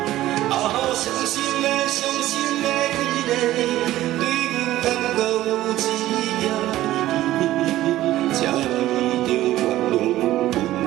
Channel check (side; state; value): left; quieter; 15.0 dB